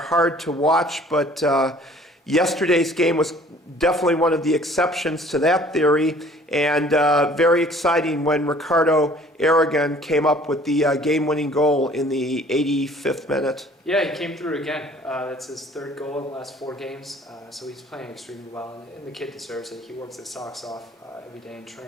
to watch, but yesterday's game was definitely one of the exceptions to that theory, and very exciting when Ricardo Aragon came up with the game-winning goal in the 85th minute. Yeah, he came through again. That's his third goal in the last 4 games, so he's playing extremely well, and the kid deserves it. He works his socks off every day in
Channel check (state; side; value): normal; both; correlation 0.53